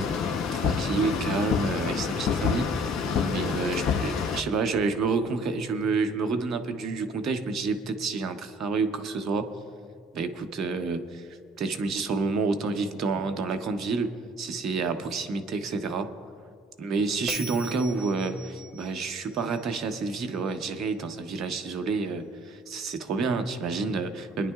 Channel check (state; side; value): normal; both; correlation 0.56